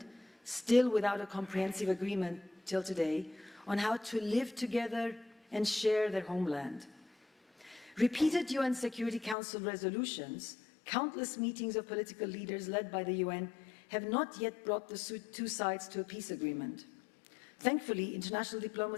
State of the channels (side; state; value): right; drops out; at 9.3 s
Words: still without a comprehensive agreement till today, on how to live together and share their homeland. Repeated UN Security Council resolutions, countless meetings of political leaders led by the UN, have not yet brought the two sides to a peace agreement. Thankfully, international